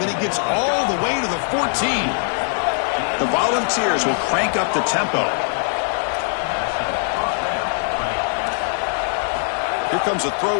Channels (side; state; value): right; silent; digital silence